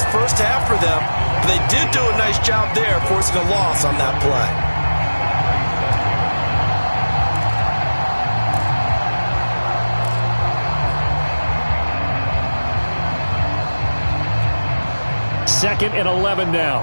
first half for them, but they did do a nice job there forcing a loss on that play. Second and 11 now.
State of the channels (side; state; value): both; inverted; correlation -1.00